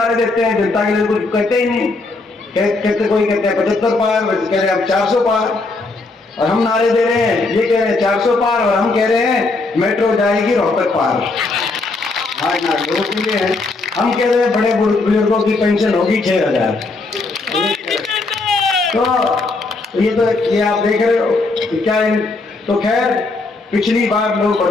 देते हैं, जनता के लिए कुछ कहते ही नहीं। कहते कोई कहते हैं 75 पार, कह रहे हैं 400 पार, और हम नारे दे रहे हैं, ये कह रहे हैं 400 पार, और हम कह रहे हैं मेट्रो जाएगी रोहतक पार। हाँ नारे के लिए है, हम कह रहे हैं बड़े बुजुर्गों की पेंशन होगी 6000। तो ये आप देख रहे हो क्या है। तो खैर पिछली बार लोग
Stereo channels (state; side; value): quieter; right; 3.5 dB